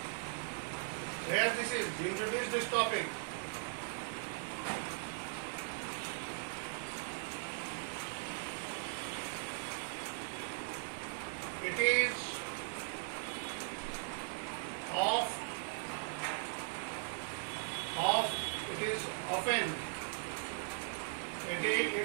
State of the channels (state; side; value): silent; left; 52 dB below the other